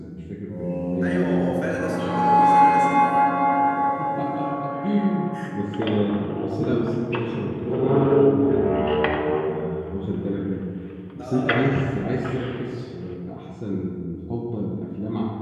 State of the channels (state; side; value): identical; both; correlation 1.00